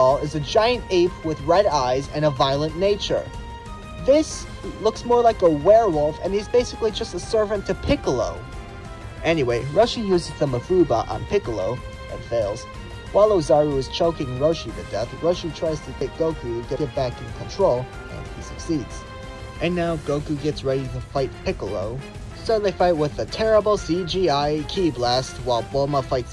is a giant ape with red eyes and a violent nature. This looks more like a werewolf, and he's basically just a servant to Piccolo. Anyway, Roshi uses the Mafuba on Piccolo, and fails. While Ozaru is choking Roshi to death, Roshi tries to get Goku to get back in control, and he succeeds. And now Goku gets ready to fight Piccolo, so they fight with a terrible CGI ki blast while Bulma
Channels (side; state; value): both; identical; correlation 1.00